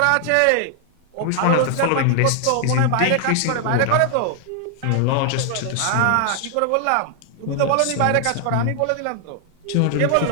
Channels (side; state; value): both; different; correlation 0.00